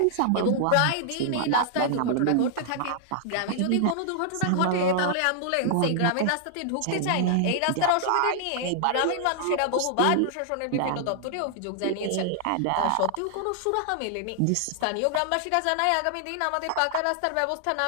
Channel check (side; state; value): both; different; correlation -0.01